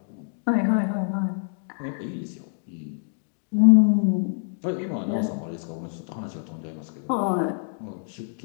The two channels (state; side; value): silent; right; digital silence